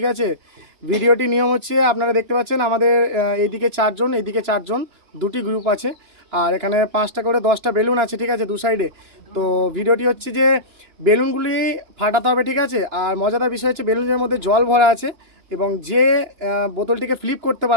আছে, ভিডিওটি নিয়ম হচ্ছে আপনারা দেখতে পাচ্ছেন আমাদের এইদিকে চারজন, এইদিকে চারজন, দুটি গ্রুপ আছে আর এখানে 5টা করে 10টা বেলুন আছে। ঠিক আছে, দু সাইডে। তো ভিডিওটি হচ্ছে যে বেলুনগুলি ফাটাতে হবে। ঠিক আছে, আর মজাদার বিষয় হচ্ছে বেলুনের মধ্যে জল ভরা আছে এবং যে বোতলটিকে ফ্লিপ করতে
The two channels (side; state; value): left; late; 2.9 ms